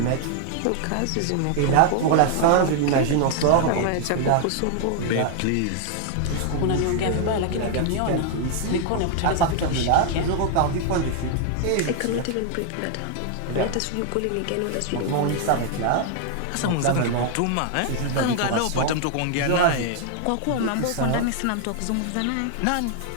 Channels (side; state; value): both; different; correlation 0.00